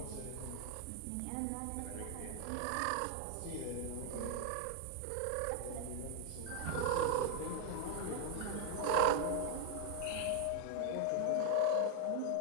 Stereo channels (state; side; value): different; both; correlation 0.01